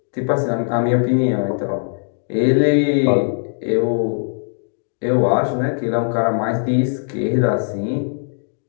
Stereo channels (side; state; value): right; silent; digital silence